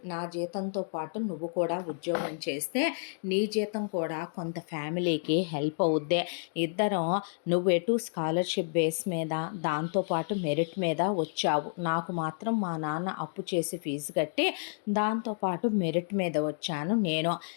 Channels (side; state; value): right; silent; digital silence